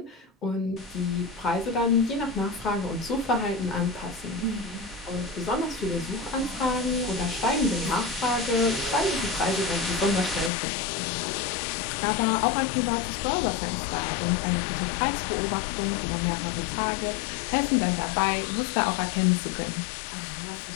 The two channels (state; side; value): drops out; right; at 10.5 s